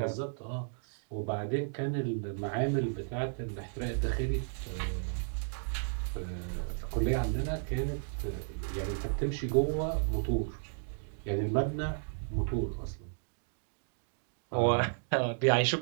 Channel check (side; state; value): left; silent; digital silence